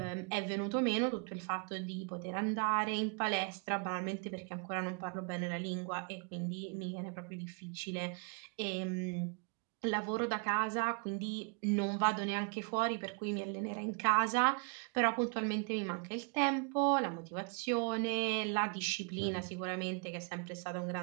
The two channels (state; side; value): quieter; left; 38.3 dB